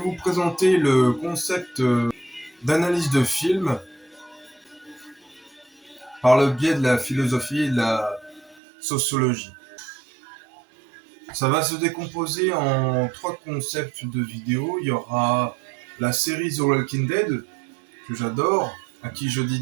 présenter le concept d'analyse de film par le biais de la philosophie et de la sociologie. Ça va se décomposer en 3 concepts de vidéos. Il y aura la série The Walking Dead, que j'adore, à qui je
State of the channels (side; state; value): left; drops out; at 8.6 s